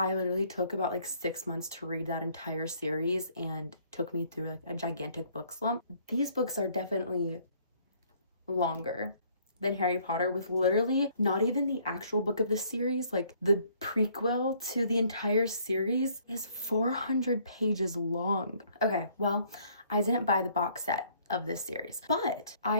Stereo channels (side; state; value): both; inverted; correlation -0.62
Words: literally took about like 6 months to read that entire series and took me through like a gigantic book slump. These books are definitely longer than Harry Potter, with literally not even the actual book of the series, like the prequel to the entire series is 400 pages long. Okay, well, I didn't buy the box set of this series, but I